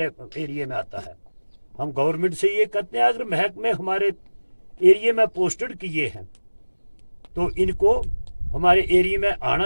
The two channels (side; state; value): both; inverted; correlation -1.00